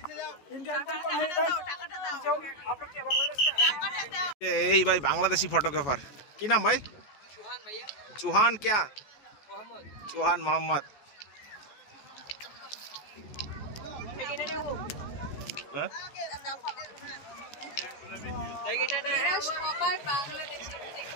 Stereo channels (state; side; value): late; right; 14 ms